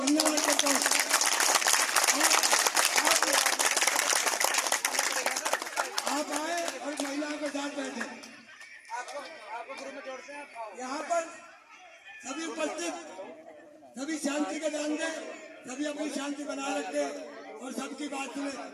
करता हूँ। आप आए और महिलाओं के साथ बैठे। यहाँ पर सभी उपस्थित सभी शांति का ध्यान दें, सभी अपनी शांति बनाए रखे और सबकी बात सुने।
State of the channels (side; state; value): both; identical; correlation 1.00